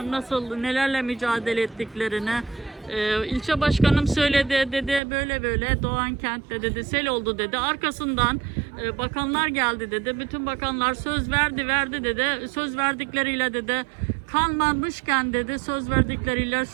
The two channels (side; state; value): left; drops out; at 5.0 s